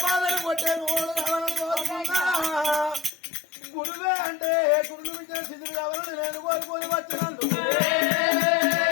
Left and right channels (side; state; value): right; drops out; at 3.1 s